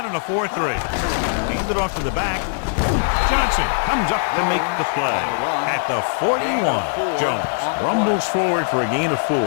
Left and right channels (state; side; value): silent; right; digital silence